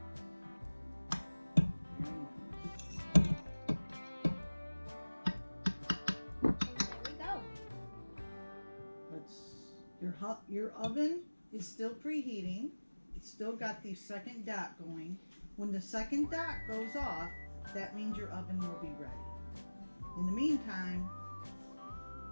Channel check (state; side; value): inverted; both; correlation -1.00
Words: And there we go. Your oven is still preheating. It's still got the second dot going. When the second dot goes off, that means your oven will be ready. In the meantime,